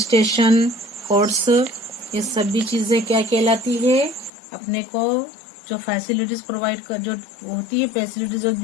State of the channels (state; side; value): drops out; right; at 4.3 s